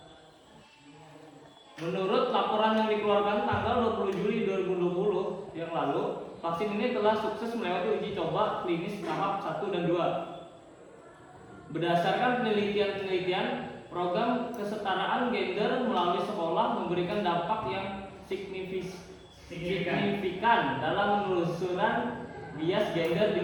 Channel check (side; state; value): both; identical; correlation 1.00